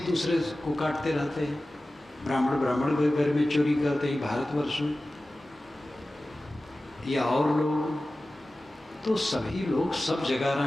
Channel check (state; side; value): normal; both; correlation 0.96